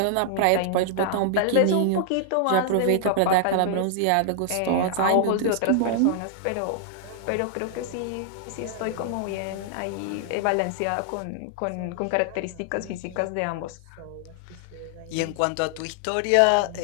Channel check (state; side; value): different; both; correlation 0.00